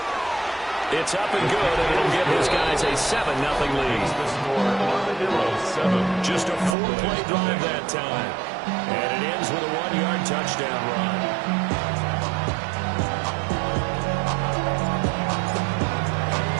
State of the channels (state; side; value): drops out; left; at 6.8 s